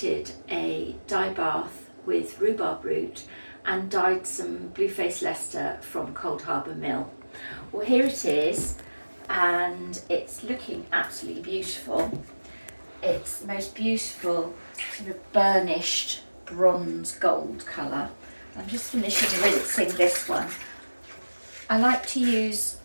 a dye bath with rhubarb root and dyed some Blueface Leicester from Cold Harbour Mill. Well, here it is and it's looking absolutely beautiful. It's the most beautiful sort of burnished bronze gold colour. I'm just finishing rinsing this one. I like to use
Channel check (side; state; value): both; inverted; correlation -1.00